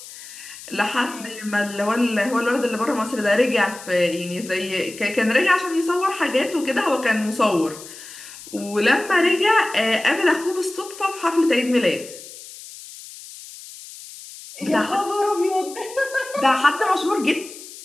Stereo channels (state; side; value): noise; left; hiss, 15 dB below the sound